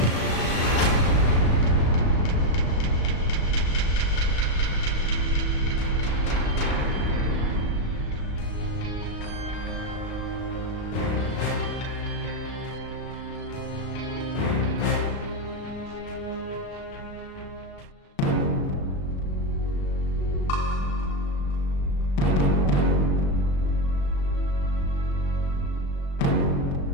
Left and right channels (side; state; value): right; late; 36 ms